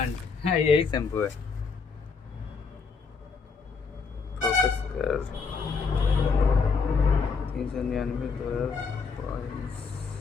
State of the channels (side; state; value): right; quieter; 5.1 dB